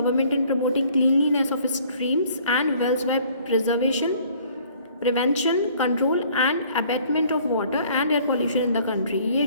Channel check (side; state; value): both; inverted; correlation -0.57